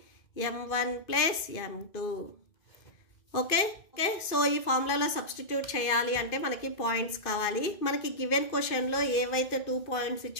M1 plus M2 okay so ఈ ఫార్ములాలో substitute చేయాలి అంటే మనకి points కావాలి మనకి given క్వశ్చన్లో ఏవైతే 2 points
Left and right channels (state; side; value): late; right; 2.5 ms